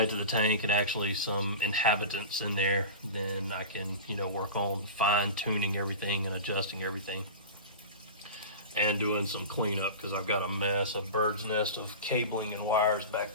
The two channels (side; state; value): both; inverted; correlation -0.30